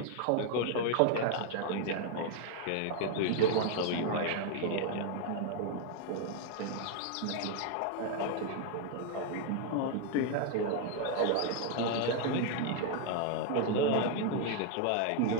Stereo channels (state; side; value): different; both; correlation 0.00